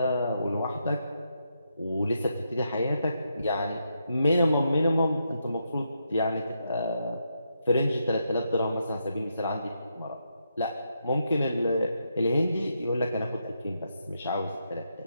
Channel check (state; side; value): inverted; both; correlation -0.82